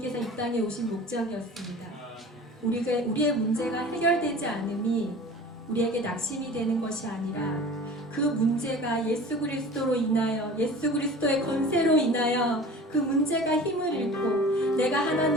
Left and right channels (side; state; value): both; normal; correlation 0.41